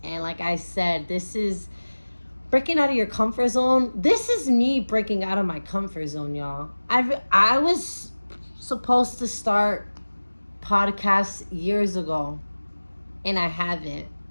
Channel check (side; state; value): both; inverted; correlation -1.00